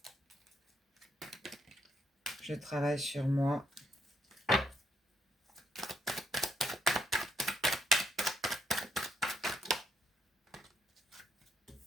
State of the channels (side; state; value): both; normal; correlation 0.74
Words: Je travaille sur moi.